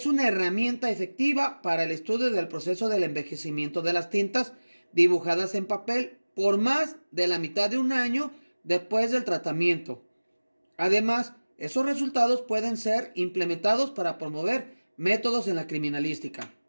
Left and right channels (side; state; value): both; inverted; correlation -1.00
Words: una herramienta efectiva para el estudio del proceso del envejecimiento de las tintas dibujadas en papel por más de la mitad de un año después del tratamiento. Además, esos resultados pueden ser implementados para promover métodos en la criminalística.